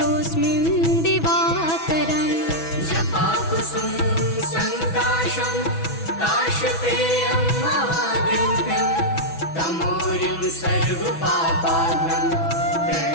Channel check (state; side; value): late; right; 6.1 ms